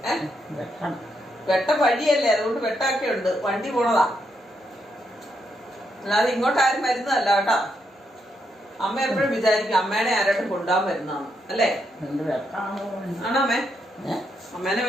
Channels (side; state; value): both; normal; correlation 0.79